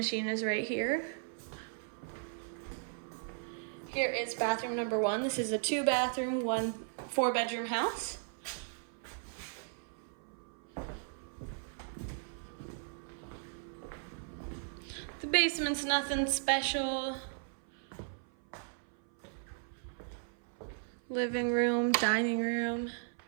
is right here. Here is bathroom number 1. This is a 2-bathroom, 4-bedroom house. The basement's nothing special. Living room, dining room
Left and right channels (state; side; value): silent; left; 54 dB below the other